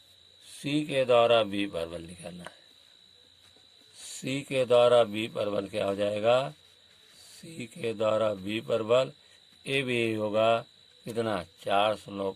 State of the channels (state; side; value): identical; both; correlation 1.00